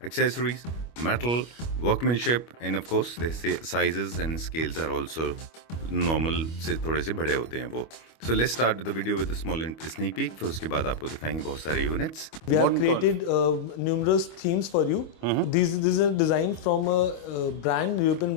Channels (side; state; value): right; late; 25 ms